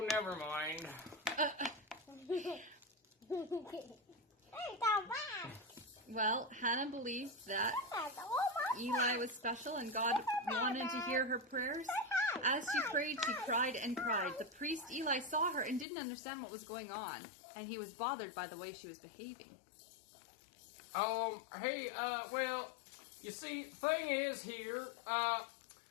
never mind. Well, Hannah believed that Eli was special and God wanted to hear her prayers. As she prayed, she cried and cried. The priest Eli saw her and didn't understand what was going on, and he was bothered by the way she was behaving. Hey, you see, thing is here,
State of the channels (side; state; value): right; drops out; at 15.9 s